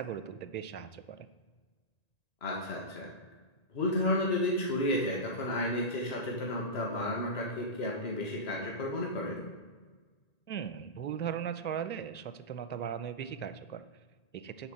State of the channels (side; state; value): right; late; 1.9 ms